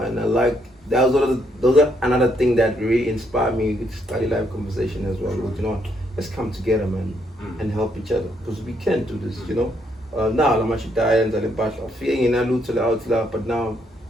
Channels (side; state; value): both; normal; correlation 0.73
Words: I like those are another thing that really inspired me to study live conversation as well. Let's come together, man, and help each other because we can do this, now I'm actually dying and feeling in a out, but now